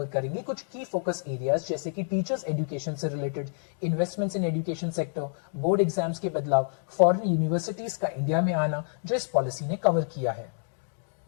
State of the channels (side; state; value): right; silent; 59 dB below the other